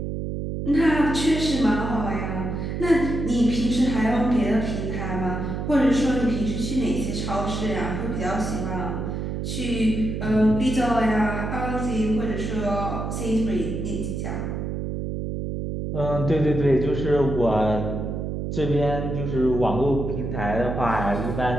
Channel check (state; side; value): noise; right; hum, 3 dB below the sound